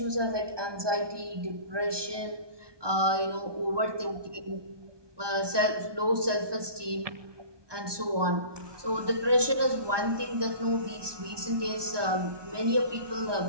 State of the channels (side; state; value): left; late; 1.2 ms